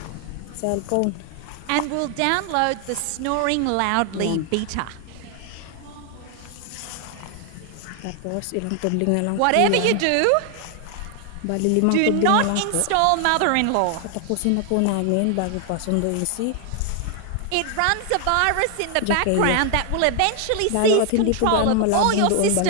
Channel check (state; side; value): different; both; correlation 0.00